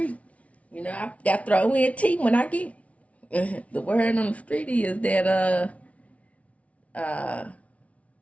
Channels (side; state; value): right; late; 0.065 ms